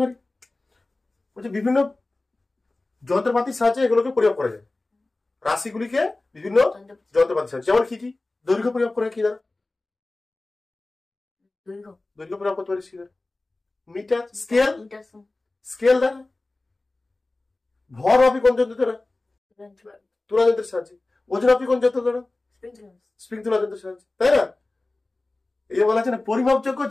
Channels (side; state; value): right; quieter; 3.0 dB